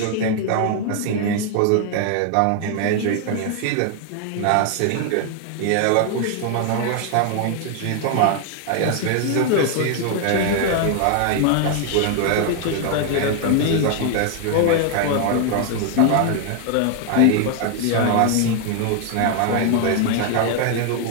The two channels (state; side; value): different; both; correlation 0.00